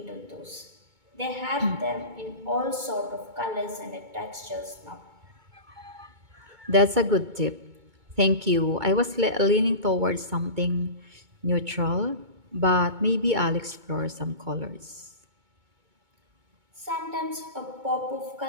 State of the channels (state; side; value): late; left; 2.2 ms